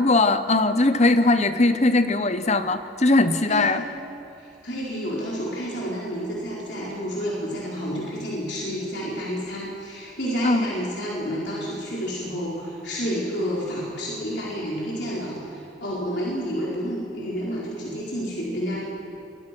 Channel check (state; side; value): normal; both; correlation 0.48